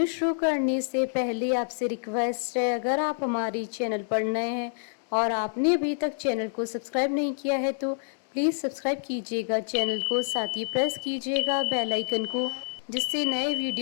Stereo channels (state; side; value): silent; right; digital silence